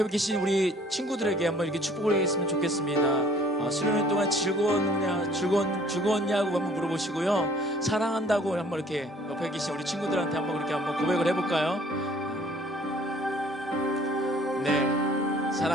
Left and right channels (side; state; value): both; normal; correlation 0.56